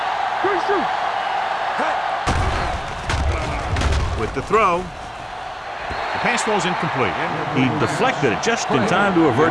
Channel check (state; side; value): identical; both; correlation 1.00